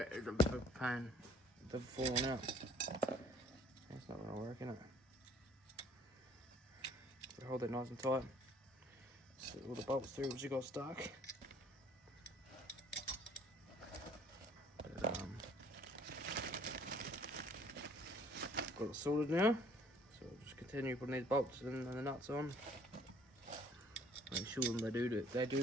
it's a bit of a pain. They've fallen out. That's not gonna work, innit? So hold that nice and tight. Set all the bolts through which you got stuck. But, got it sorted now. So I'll just continue putting these bolts and the nuts on. Make sure they do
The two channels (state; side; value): normal; both; correlation 0.57